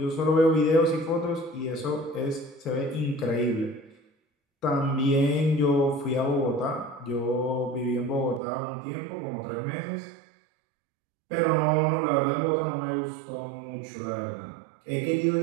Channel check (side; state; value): left; drops out; at 8.4 s